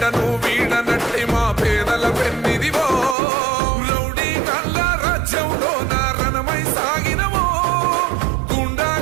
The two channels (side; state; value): left; drops out; at 3.2 s